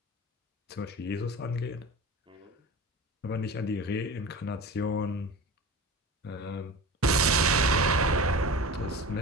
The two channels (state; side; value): normal; both; correlation 0.33